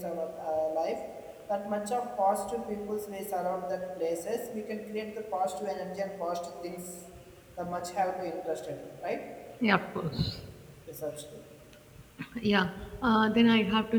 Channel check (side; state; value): both; identical; correlation 1.00